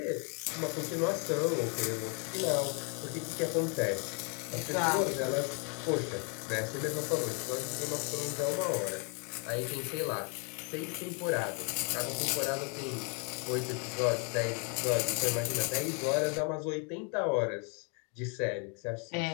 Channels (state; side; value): quieter; right; 36.7 dB